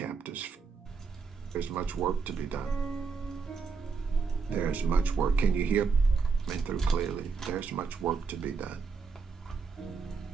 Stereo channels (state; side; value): quieter; left; 5.1 dB